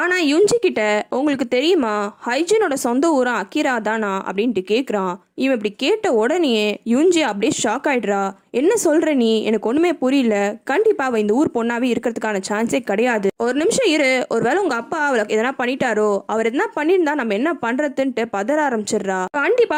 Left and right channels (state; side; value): identical; both; correlation 1.00